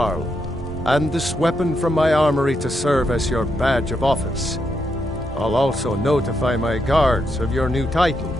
and this weapon from my armory to serve as your badge of office. I'll also notify my guards of your new title.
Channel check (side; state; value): both; normal; correlation 0.81